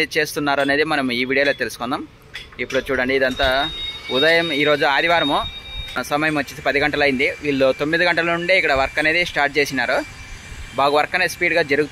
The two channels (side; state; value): both; identical; correlation 1.00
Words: చేస్తున్నారు అనేది మనం ఈ వీడియోలో తెలుసుకుందాం. ఇప్పుడు చూడండి, ఇదంతా ఉదయం, ఈరోజు ఆదివారము, సమయం వచ్చేసి 10 గంటలు అయింది. వీళ్ళు 9 గంటల నుండే ఇక్కడ వర్క్ అనేది స్టార్ట్ చేసినారు. బాగా వర్క్ అనేది స్పీడ్గా